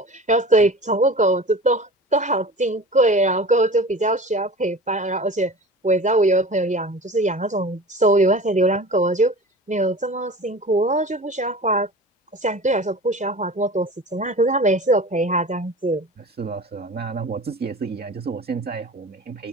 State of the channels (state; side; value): normal; both; correlation 0.37